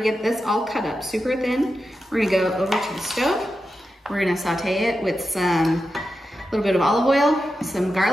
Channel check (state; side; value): normal; both; correlation 0.89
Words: this all cut up super thin, we're gonna go over to the stove. We're gonna saute it with some little bit of olive oil, some